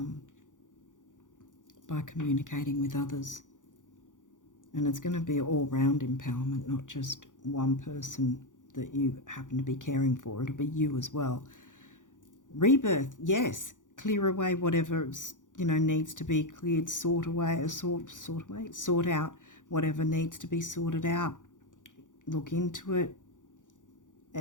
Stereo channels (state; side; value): late; right; 0.87 ms